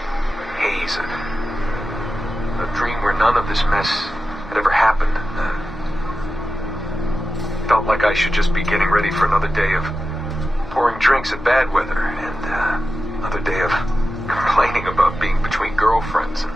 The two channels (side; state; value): both; normal; correlation 0.92